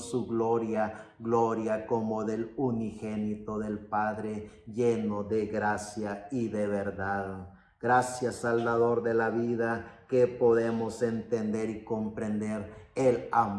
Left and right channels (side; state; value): both; identical; correlation 1.00